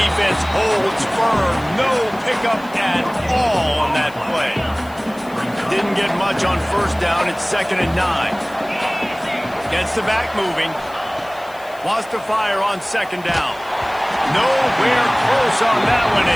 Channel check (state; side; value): noise; left; hiss, 24 dB below the sound